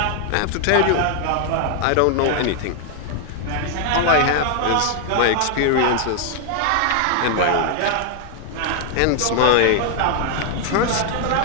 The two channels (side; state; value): both; different; correlation 0.00